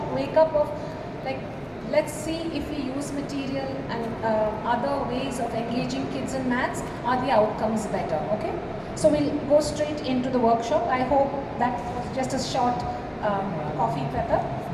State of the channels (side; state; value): both; identical; correlation 1.00